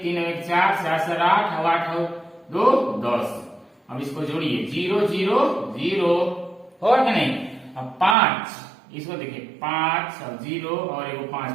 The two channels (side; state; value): left; drops out; at 8.2 s